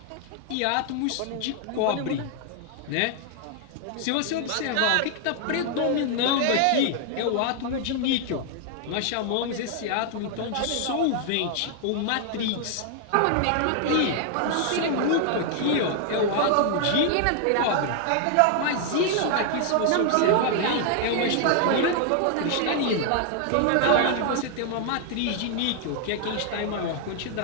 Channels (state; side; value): different; both; correlation 0.00